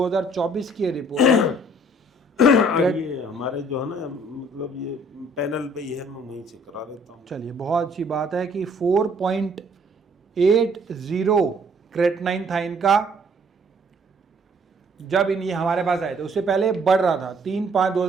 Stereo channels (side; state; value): both; normal; correlation 0.60